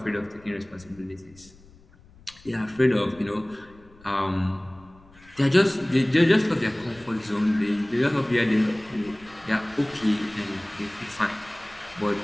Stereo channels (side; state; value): left; noise; rumble, 25 dB below the sound